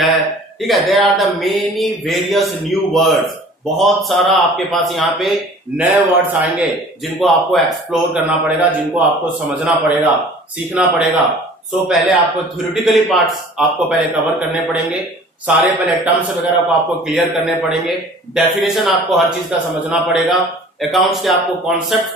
ठीक है। There are the many various new words. बहुत सारा आपके पास यहाँ पे नए वर्ड्स आएंगे जिनको आपको एक्सप्लोर करना पड़ेगा, जिनको आपको समझना पड़ेगा, सीखना पड़ेगा। सो पहले आपको थ्योरेटिकली पार्ट्स आपको पहले कवर करने पड़ेंगे, सारे पहले टर्म्स वगैरह को आपको क्लियर करने पड़ेंगे, डेफिनेशन आपको हर चीज का समझना पड़ेगा, अकाउंट्स के आपको कॉन्सेप्ट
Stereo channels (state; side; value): normal; both; correlation 0.47